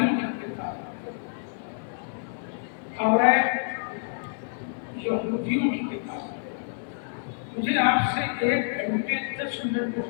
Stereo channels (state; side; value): silent; right; digital silence